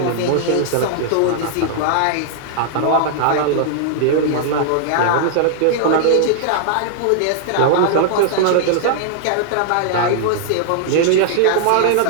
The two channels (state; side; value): different; both; correlation -0.01